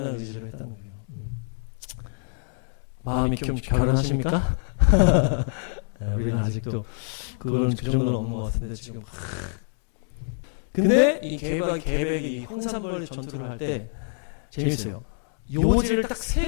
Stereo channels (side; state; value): right; silent; digital silence